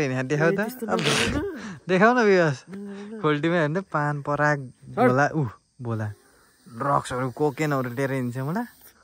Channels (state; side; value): identical; both; correlation 1.00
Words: देखाउ त देखाउ न विवास खोल्टीमा हेर्नु पान पराग भोला भोला ड्रग्सहरू कोकेनहरू लिएर हिँड्छ मलाई